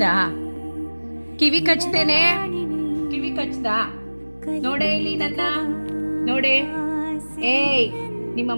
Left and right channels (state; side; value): inverted; both; correlation -1.00